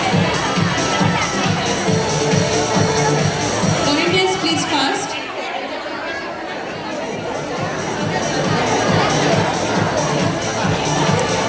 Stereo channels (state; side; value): identical; both; correlation 1.00